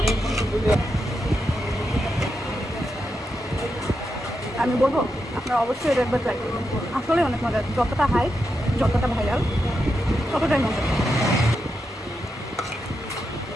আমি বলবো আপনারা অবশ্যই এটা একবার ট্রাই করবেন, আসলে অনেক মজা। যতটা হাইপ, যতটা ভাইরাল, ততটাই মজা।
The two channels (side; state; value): both; normal; correlation 0.86